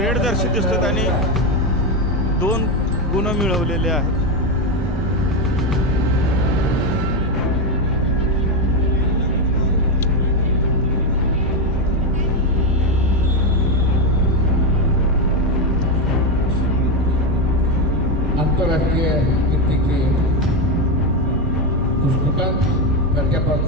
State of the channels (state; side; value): normal; both; correlation 0.09